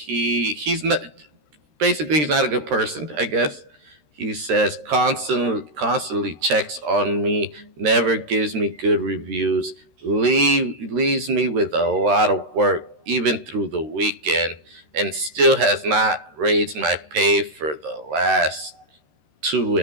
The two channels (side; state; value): left; late; 13 ms